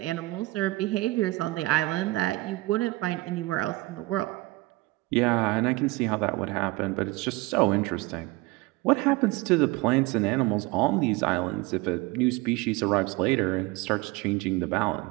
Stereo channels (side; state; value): left; quieter; 21.6 dB